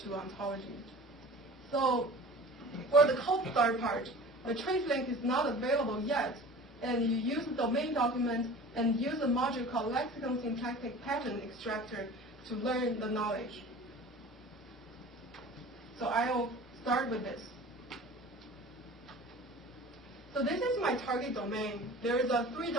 to ontology. So for the cold start part, the trace link is not available yet, and you use the domain document and use a module called lexicon syntactic pattern extractor to learn the knowledge. So I'll start with this. So this is my target domain. There are three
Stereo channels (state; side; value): normal; both; correlation 0.40